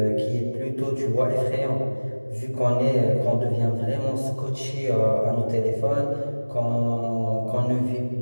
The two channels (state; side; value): inverted; both; correlation -1.00